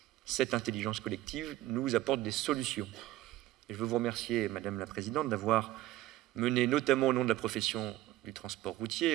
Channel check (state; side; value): quieter; left; 15.3 dB